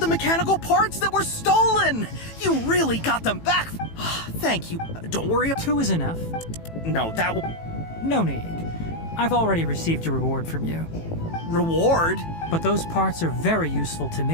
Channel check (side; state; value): right; late; 18 ms